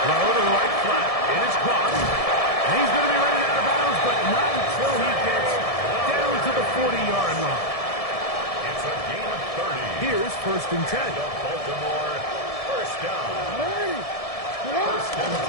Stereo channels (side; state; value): right; late; 1.7 ms